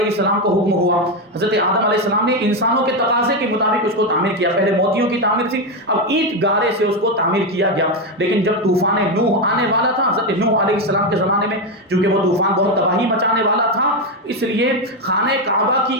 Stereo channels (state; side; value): normal; both; correlation 0.09